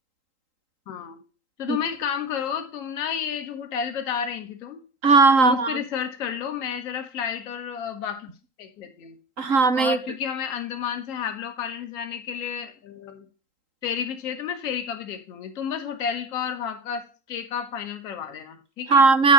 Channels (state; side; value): late; left; 3.8 ms